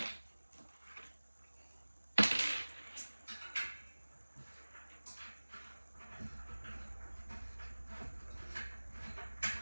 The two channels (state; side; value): inverted; both; correlation -1.00